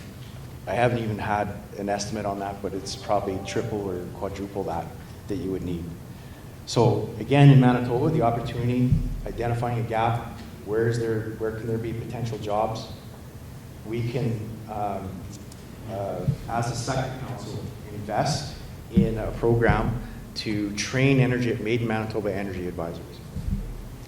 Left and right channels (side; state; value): both; identical; correlation 1.00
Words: I haven't even had an estimate on that, but it's probably triple or quadruple that you would need. So again, in Manitoba, the opportunity, identifying a gap, where can there be potential jobs? We can, as a sector council, invest in a program to train Made in Manitoba energy advisors.